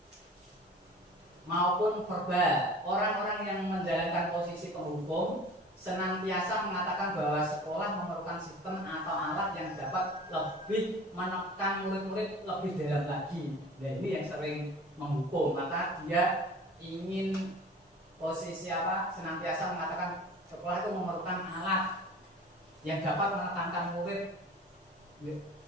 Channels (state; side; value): normal; both; correlation 0.42